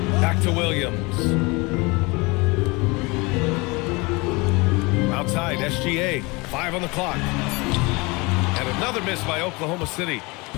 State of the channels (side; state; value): right; quieter; 25.8 dB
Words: Back to Williams. Outside, SGA, 5 on the clock. And another miss by Oklahoma City.